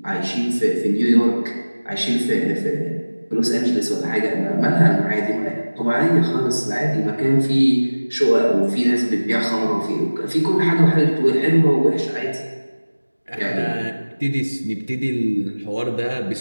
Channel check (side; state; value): both; inverted; correlation -1.00